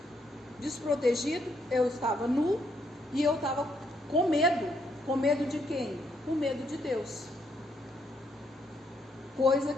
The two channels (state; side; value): normal; both; correlation 0.74